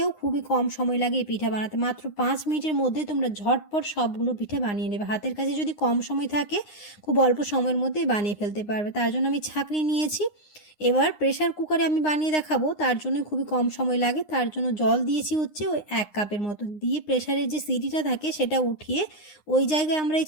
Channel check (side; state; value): right; late; 9.7 ms